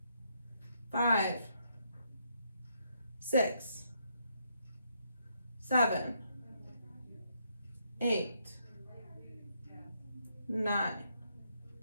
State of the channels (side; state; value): both; inverted; correlation -0.75